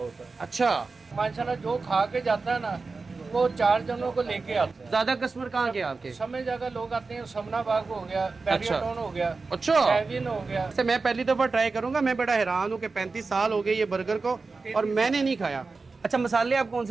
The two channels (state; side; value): quieter; left; 4.1 dB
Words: है। अच्छा, माशाल्लाह जो खा के जाता है ना वो 4 जनों को लेके आता है। ज्यादा कस्टमर कहाँ के आपके? समय जगह लोग आते हैं, समना बाग हो गया, बैरियाटोन हो गया, अच्छा, सेविन हो गया। से मैं पहली दफा ट्राई करूंगा। मैं बड़ा हैरान हूँ कि 35 साल हो गए ये बर्गर को और मैंने नहीं खाया। अच्छा, मसाले आप कौन